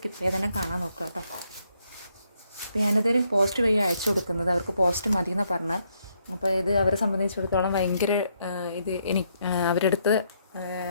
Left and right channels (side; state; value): both; inverted; correlation -0.75